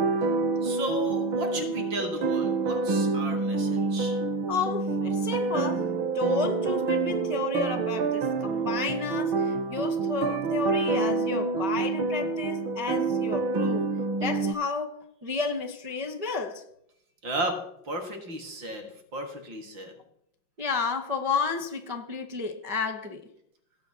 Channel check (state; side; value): late; left; 5.2 ms